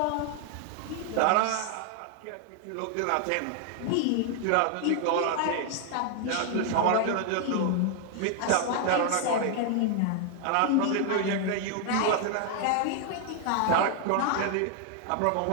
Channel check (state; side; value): different; both; correlation 0.00